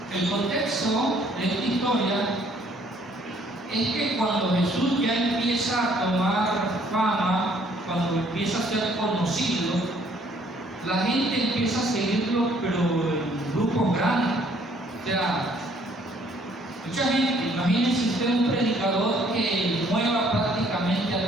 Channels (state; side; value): normal; both; correlation 0.62